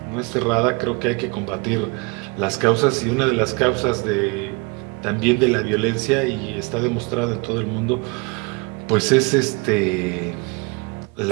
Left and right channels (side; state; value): left; quieter; 29.5 dB